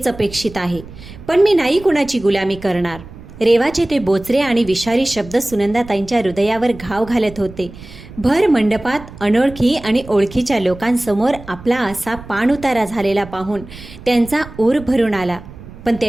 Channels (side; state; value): right; noise; rumble, 16 dB below the sound